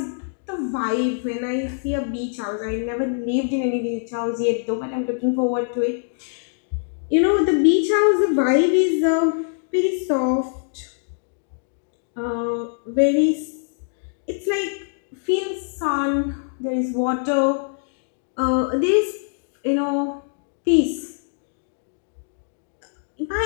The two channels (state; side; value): silent; right; digital silence